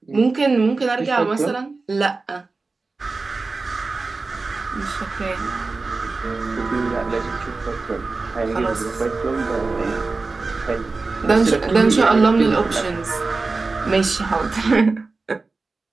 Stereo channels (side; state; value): left; quieter; 3.8 dB